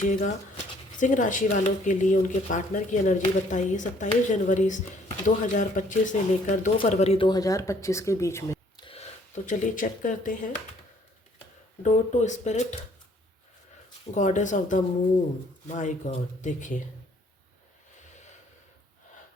सिंह राशि वालों के लिए उनके पार्टनर की एनर्जी बताइए 27 जनवरी 2025 से लेकर 2 फरवरी 2025 के बीच में। तो चलिए चेक करते हैं। Door to spirit, goddess of the moon, my god. देखिए,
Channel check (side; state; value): both; normal; correlation 0.62